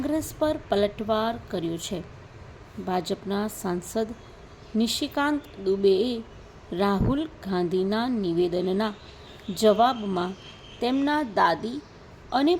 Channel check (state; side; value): identical; both; correlation 1.00